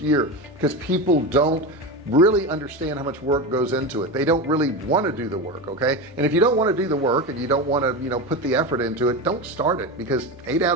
year because people don't really understand how much work goes into it. They don't really want to do the work. Okay, and if you don't want to do the work and you don't want to put the effort into it, don't start it, because 8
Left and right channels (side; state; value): both; normal; correlation 0.20